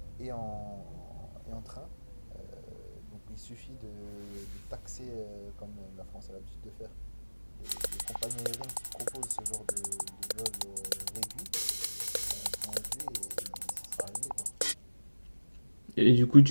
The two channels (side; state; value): both; inverted; correlation -1.00